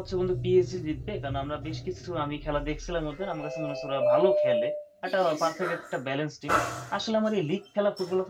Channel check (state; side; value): identical; both; correlation 1.00